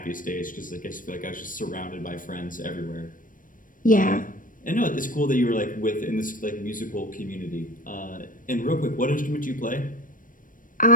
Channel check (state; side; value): late; right; 0.39 ms